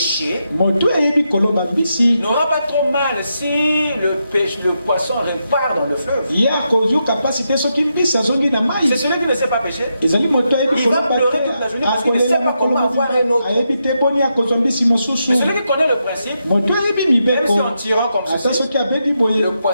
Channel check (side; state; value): both; inverted; correlation -0.84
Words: n'aura pas trop mal si le poisson repart dans le fleuve. C'est celui qui ne sait pas pécher. Il va pleurer toute la journée parce qu'il ne sait pas comment avoir un autre. Mais celui qui connaît le principe, même si en tirant comme ceci, le